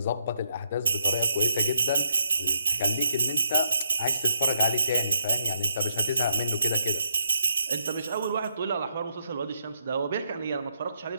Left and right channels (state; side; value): inverted; both; correlation -0.78